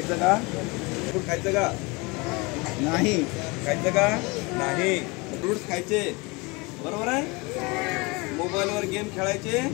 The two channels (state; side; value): quieter; right; 26.4 dB